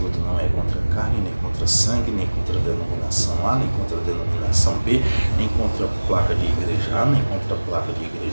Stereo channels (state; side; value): inverted; both; correlation -1.00